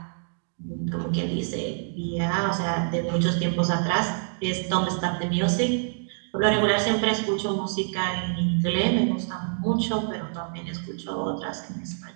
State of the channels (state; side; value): silent; left; digital silence